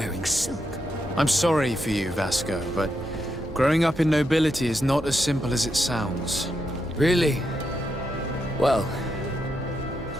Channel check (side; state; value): both; normal; correlation 0.83